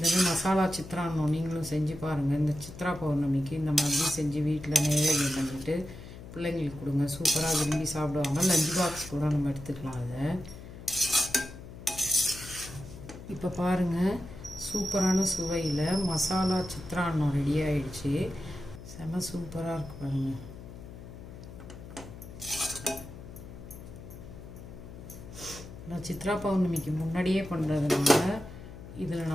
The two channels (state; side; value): noise; left; hum, 14 dB below the sound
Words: மாதிரி மசாலா சித்திரான்னம் நீங்களும் செஞ்சு பாருங்கள். இந்த சித்ரா பௌர்ணமிக்கு இந்த மாதிரி செஞ்சு வீட்டில் நைவேத்தியம் பண்ணிவிட்டு பிள்ளைங்களுக்கு கொடுங்க, சூப்பராக விரும்பி சாப்பிடுவாங்க. லஞ்ச் பாக்ஸ் கூட நம்ம எடுத்துக்கலாம் அதை. இப்போ பாருங்கள், சூப்பரான சுவையில் மசாலா சித்திரான்னம் ரெடி ஆகிடுச்சு. செம சூப்பராக இருக்கு பாருங்கள். நான் சித்ரா பௌர்ணமிக்கு முன்னாடியே பண்ணுறதுனால இதில்